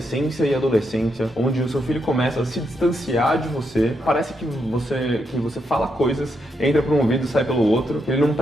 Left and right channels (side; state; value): both; normal; correlation 0.81